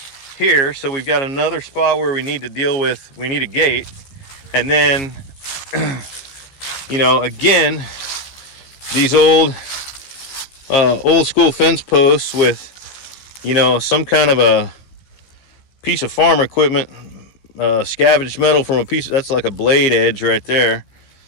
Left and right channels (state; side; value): late; right; 15 ms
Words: here. So we've got another spot where we need to deal with, we need a gate. And then, you know, again, these old school fence posts with, you know, some kind of a piece of farm equipment, scavenged metal from a piece, that's like a blade edge right there.